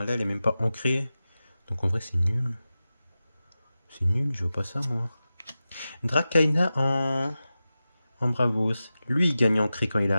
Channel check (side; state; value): both; inverted; correlation -0.94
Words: Là, elle est même pas ancrée. Donc en vrai, c'est nul. C'est nul, je veux pas ça, moi. Drakaina en Bravos. Lui, il gagne ancré quand il